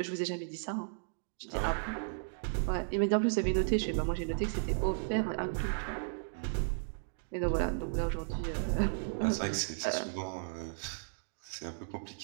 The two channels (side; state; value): left; silent; digital silence